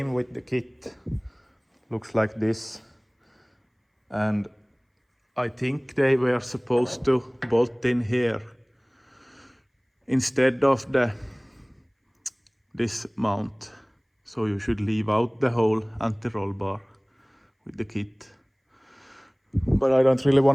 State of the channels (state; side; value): identical; both; correlation 1.00